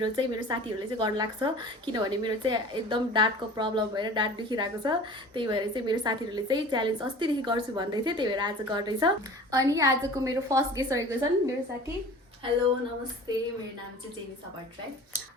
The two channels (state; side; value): normal; both; correlation 0.41